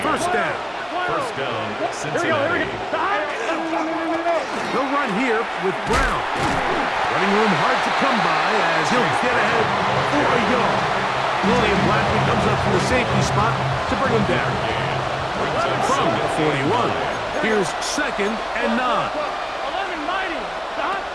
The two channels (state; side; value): identical; both; correlation 1.00